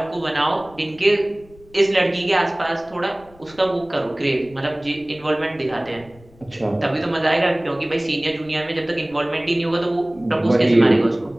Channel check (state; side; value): noise; left; rumble, 25 dB below the sound